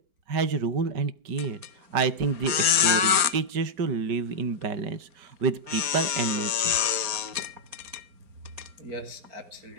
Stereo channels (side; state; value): left; late; 4.4 ms